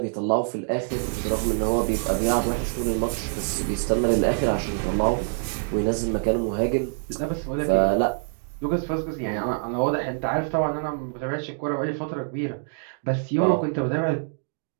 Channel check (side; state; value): left; silent; digital silence